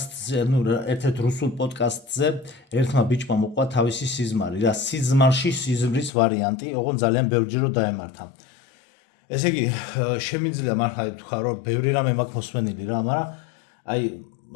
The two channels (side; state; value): right; drops out; at 6.1 s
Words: ერთ-ერთ რუსულ პოდკასტზე ერთმა ბიჭმა მოყვა თავისი სიზმარი, რა სიზმარში სიზმრის ვარიანტი, ოღონდ ძალიან ბევრჯერ დაემართა. ესე იგი, შემიძლია მართლა ვთქვა, რომ ბევრი რამე მაქვს მოსმენილი რა, მაგრამ აი